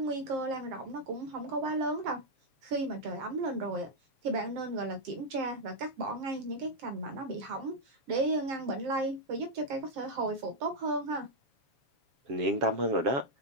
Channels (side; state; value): left; late; 7.6 ms